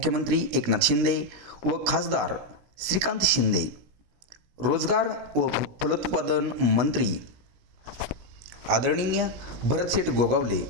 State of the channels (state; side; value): late; left; 16 ms